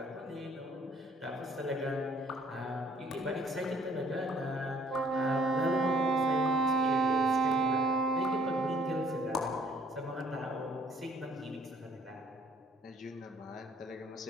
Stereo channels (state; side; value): normal; both; correlation 0.60